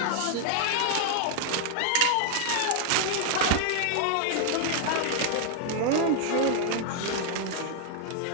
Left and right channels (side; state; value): both; different; correlation 0.00